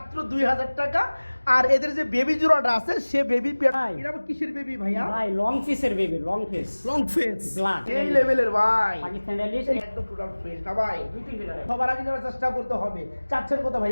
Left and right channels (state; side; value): inverted; both; correlation -1.00